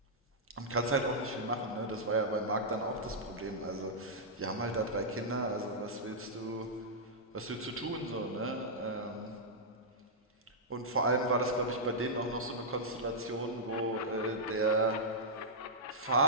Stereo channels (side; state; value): both; normal; correlation -0.10